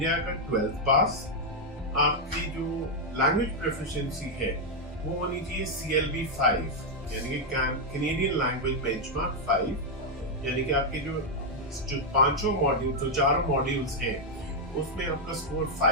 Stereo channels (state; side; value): normal; both; correlation -0.01